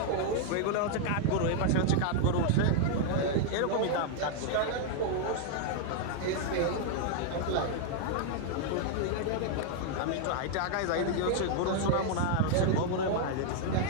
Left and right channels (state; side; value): different; both; correlation 0.00